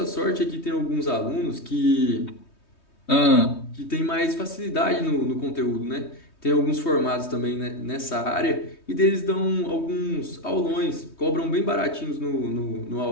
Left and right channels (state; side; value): late; right; 3.2 ms